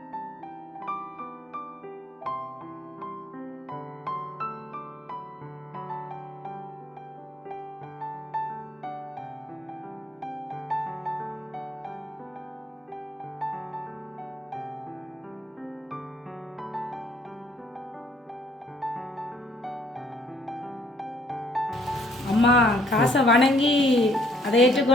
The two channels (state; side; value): normal; both; correlation 0.64